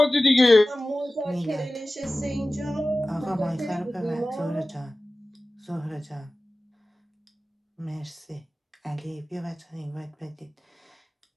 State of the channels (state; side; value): normal; both; correlation 0.97